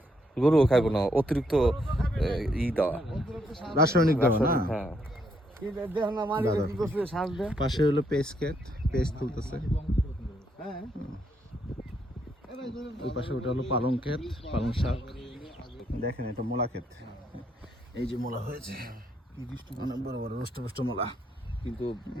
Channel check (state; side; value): normal; both; correlation 0.74